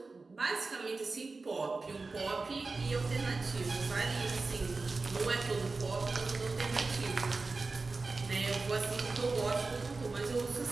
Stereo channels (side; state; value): left; quieter; 3.8 dB